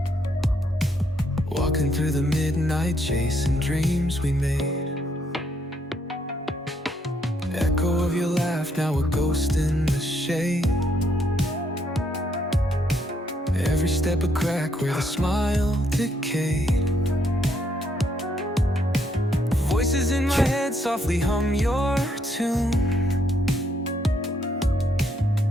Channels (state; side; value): normal; both; correlation 0.73